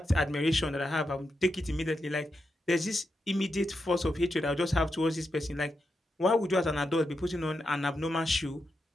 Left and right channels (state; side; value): normal; both; correlation 0.86